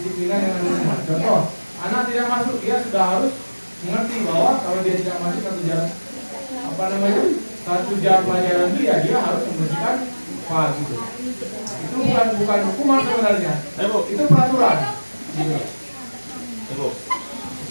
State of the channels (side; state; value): both; inverted; correlation -1.00